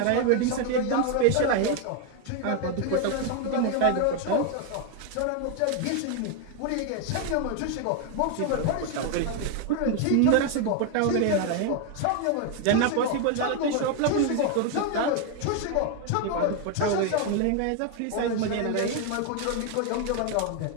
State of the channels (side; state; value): both; different; correlation 0.01